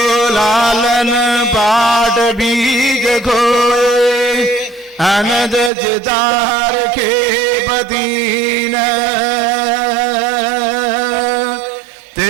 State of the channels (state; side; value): drops out; left; at 5.7 s